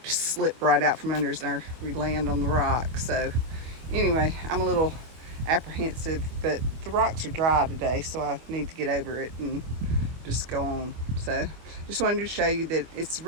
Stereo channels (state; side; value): late; left; 25 ms